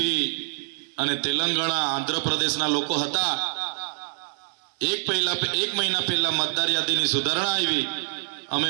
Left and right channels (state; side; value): silent; left; digital silence